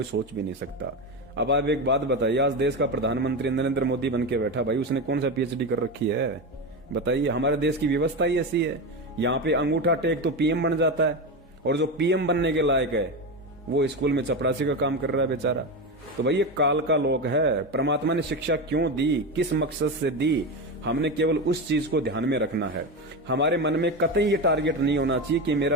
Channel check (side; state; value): both; normal; correlation 0.17